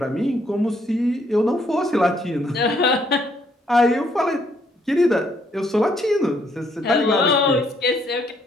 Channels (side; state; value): both; normal; correlation 0.69